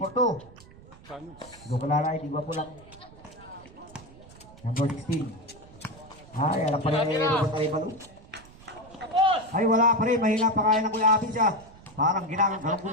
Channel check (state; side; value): noise; right; rumble, 22 dB below the sound